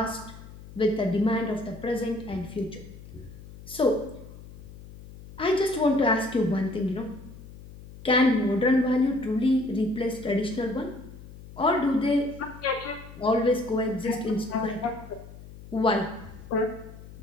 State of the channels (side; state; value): left; noise; hum, 17 dB below the sound